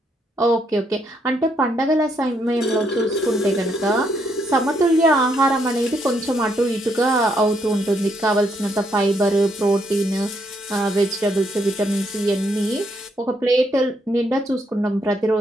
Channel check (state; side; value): normal; both; correlation 0.74